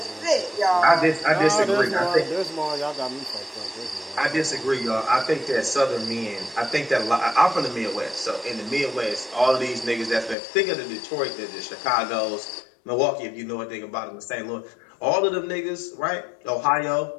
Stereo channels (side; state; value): right; drops out; at 10.4 s